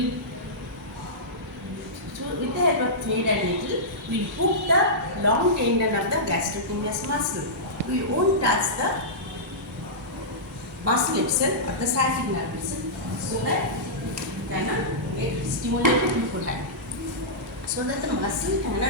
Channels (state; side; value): normal; both; correlation -0.14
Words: the help of thread and needle, we will hook the long tendon of the gastrocnemius muscle. We won't touch the muscle itself or the sciatic nerve itself, so that it cannot get stimulated beforehand. So that the muscle